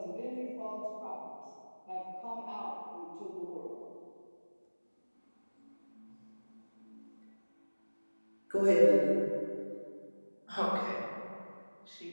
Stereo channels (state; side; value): inverted; both; correlation -1.00